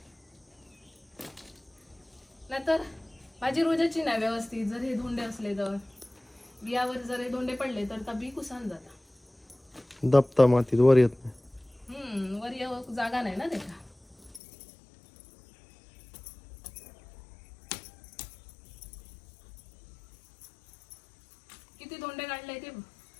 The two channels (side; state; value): right; drops out; at 14.4 s